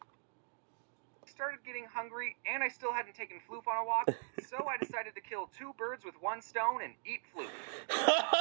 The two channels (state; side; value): silent; left; digital silence